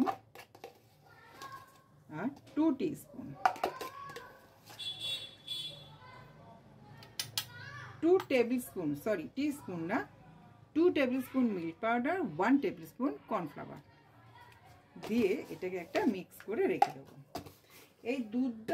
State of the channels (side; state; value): both; identical; correlation 1.00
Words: আর 2 teaspoon, 2 table spoon, sorry teaspoon না, 2 table spoon milk powder, 1 table spoon cornflour দিয়ে এটাকে একটা মিক্স করে রেখে দেবো। এই